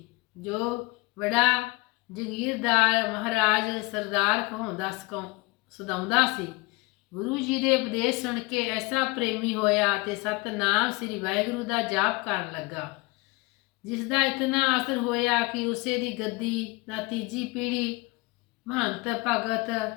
ਜੋ ਬੜਾ ਜਗੀਰਦਾਰ ਮਹਾਰਾਜ ਸਰਦਾਰ ਸਦਾਉਂਦਾ ਸੀ। ਗੁਰੂ ਜੀ ਦੇ ਉਪਦੇਸ਼ ਸੁਣ ਕੇ ਐਸਾ ਪ੍ਰੇਮੀ ਹੋਇਆ ਤੇ ਸਤਨਾਮ ਸ੍ਰੀ ਵਾਹਿਗੁਰੂ ਦਾ ਜਾਪ ਕਰਨ ਲੱਗਾ, ਜਿਸ ਦਾ ਇਤਨਾ ਅਸਰ ਹੋਇਆ ਕਿ ਉਸੇ ਦੀ ਗੱਦੀ ਦਾ ਤੀਜੀ ਪੀੜ੍ਹੀ ਮਹੰਤ ਭਗਤ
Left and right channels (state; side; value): quieter; right; 24.1 dB